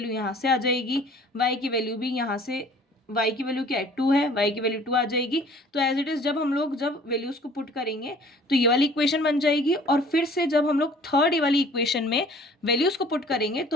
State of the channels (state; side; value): normal; both; correlation 0.51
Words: यहाँ से आ जाएगी, y की वैल्यू भी यहाँ से, y की वैल्यू क्या है 2 है, y की वैल्यू 2 आ जाएगी. तो एज इट इज जब हम लोग जब वैल्यूज को पुट करेंगे तो ये वाली इक्वेशन बन जाएगी, और फिर से जब हम लोग थर्ड वाली इक्वेशन में वैल्यूज को पुट करेंगे